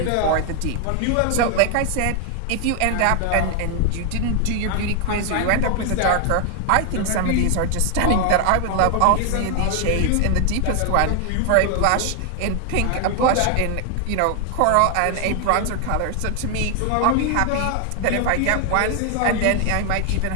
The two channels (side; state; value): both; different; correlation 0.00